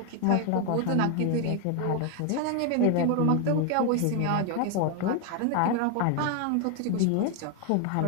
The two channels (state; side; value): different; both; correlation 0.01